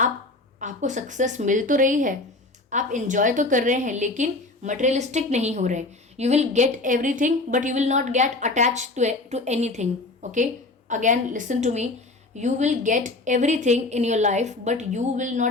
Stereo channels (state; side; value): quieter; right; 3.1 dB